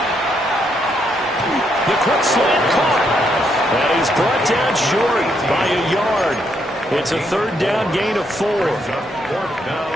The quick slant caught. And he's brought down short by a yard. It's a 3rd down gain of 4.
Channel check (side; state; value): both; normal; correlation 0.76